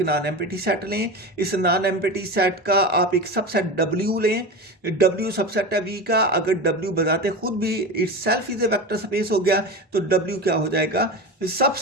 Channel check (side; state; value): both; normal; correlation 0.25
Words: नॉन एम्प्टी सेट लें। इस नॉन एम्प्टी सेट का आप एक सबसेट W लें। W सबसेट है V का, अगर W बताते खुद भी itself is a vector space हो गया तो W क्या हो जाएगा, सब